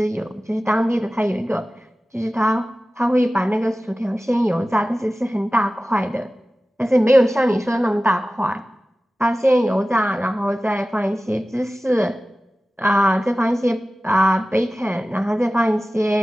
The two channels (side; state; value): both; normal; correlation 0.96